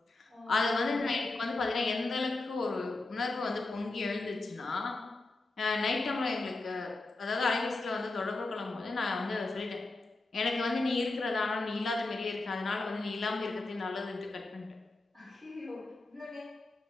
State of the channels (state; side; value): quieter; right; 3.2 dB